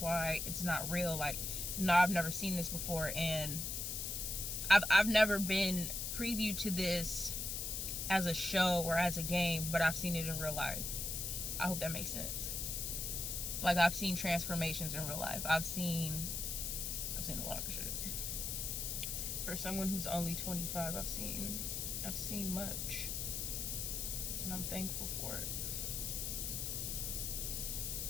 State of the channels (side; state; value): left; noise; hiss, 2 dB below the sound